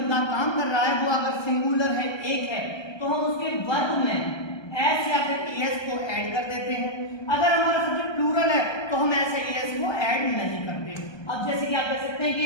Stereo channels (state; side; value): late; right; 1.2 ms